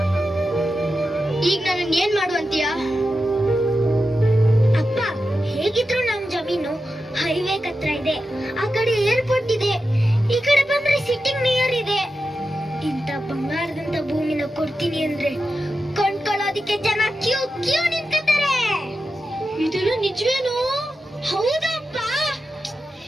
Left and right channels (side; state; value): both; normal; correlation 0.90